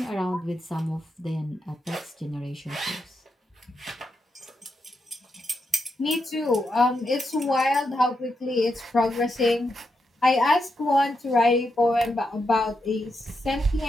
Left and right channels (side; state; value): both; normal; correlation 0.84